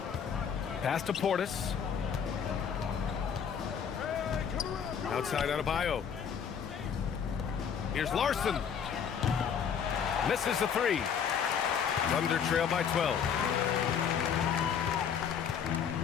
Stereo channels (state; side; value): quieter; right; 7.5 dB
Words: Pass to Portis. Outside Adebayo. Here's Larson. Misses the 3. Thunder trail by 12.